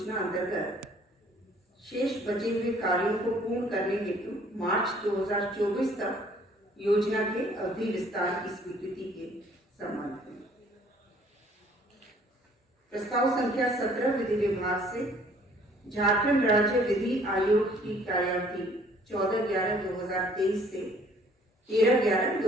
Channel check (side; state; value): both; normal; correlation 0.58